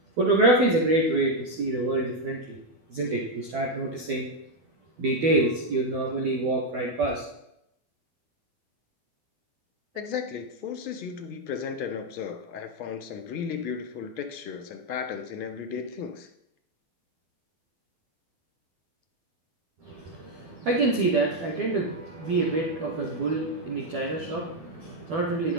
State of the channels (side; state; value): left; late; 12 ms